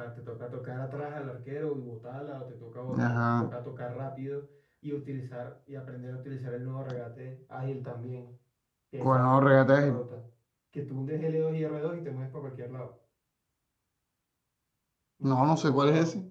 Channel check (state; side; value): identical; both; correlation 1.00